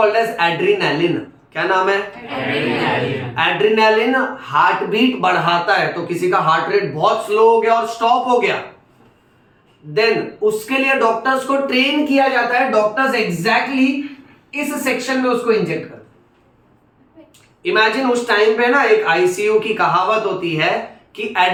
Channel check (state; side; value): identical; both; correlation 1.00